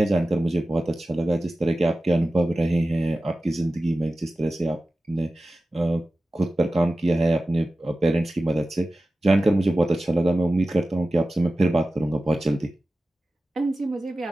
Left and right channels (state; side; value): normal; both; correlation 0.95